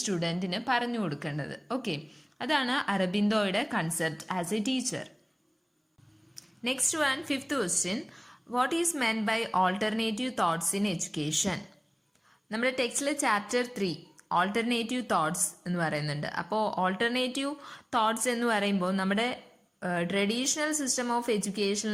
പറഞ്ഞു കൊടുക്കേണ്ടത്. ഓക്കെ, അതാണ് അരബിന്ദോയുടെ concept as a teacher. Next one, fifth question. What is meant by alternative thoughts in education? നമ്മുടെ ടെക്സ്റ്റിൽ ചാപ്റ്റർ 3 ഓൾട്ടർനേറ്റീവ് തോട്ട്സ് എന്ന് പറയുന്നുണ്ട്. അപ്പോൾ ഓൾട്ടർനേറ്റീവ് തോട്ട്സ് എന്ന് പറയുമ്പോൾ നമ്മുടെ ട്രഡീഷണൽ സിസ്റ്റം ഓഫ്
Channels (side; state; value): both; identical; correlation 1.00